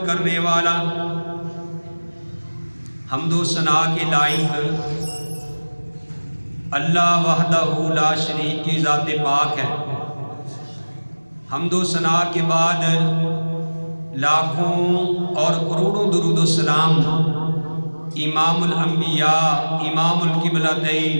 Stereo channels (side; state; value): both; inverted; correlation -1.00